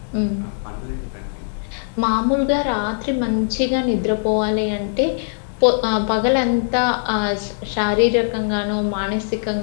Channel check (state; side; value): silent; right; digital silence